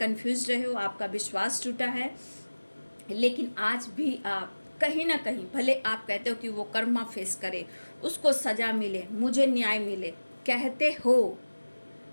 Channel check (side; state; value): both; inverted; correlation -1.00